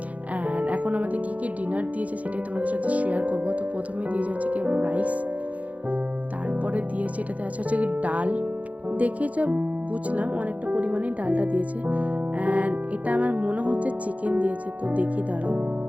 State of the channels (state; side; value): late; left; 0.069 ms